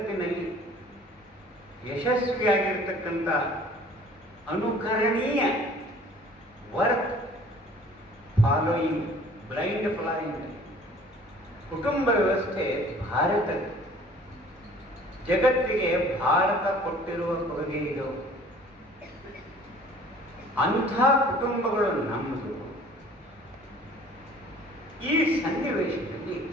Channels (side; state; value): both; normal; correlation 0.51